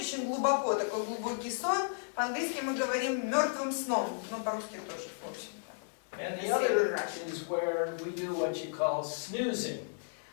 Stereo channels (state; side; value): silent; right; digital silence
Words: глубоко, такой глубокий сон. По-английски мы говорим мертвым сном, но по-русски тоже, в общем-то. And the other is where we do what you call snoozing.